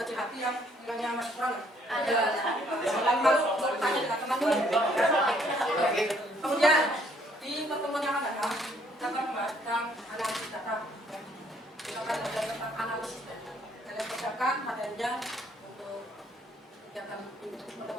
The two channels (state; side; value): normal; both; correlation 0.65